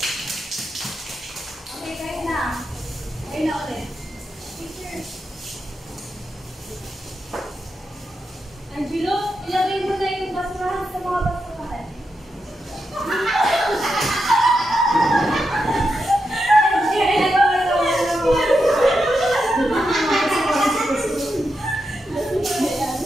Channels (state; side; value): normal; both; correlation 0.86